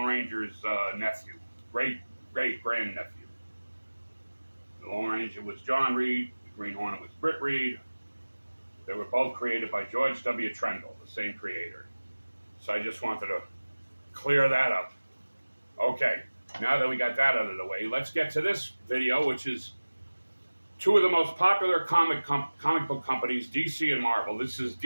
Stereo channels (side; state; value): both; inverted; correlation -1.00